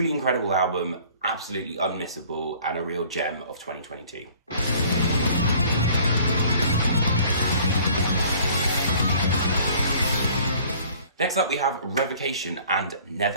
incredible album, absolutely unmissable, and a real gem of 2022. Next up we have Revocation and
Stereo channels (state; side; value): inverted; both; correlation -0.52